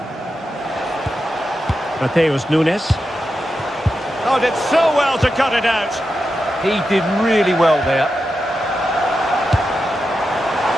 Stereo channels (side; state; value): both; normal; correlation 0.89